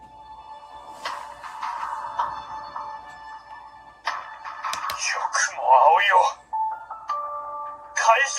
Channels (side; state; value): both; identical; correlation 1.00